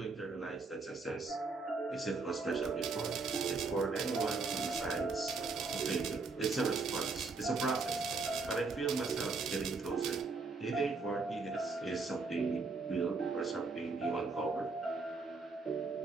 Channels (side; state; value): left; quieter; 4.0 dB